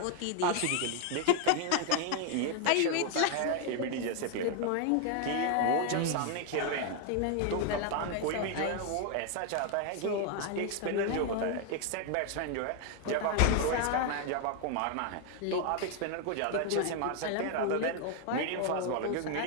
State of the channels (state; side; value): different; both; correlation 0.00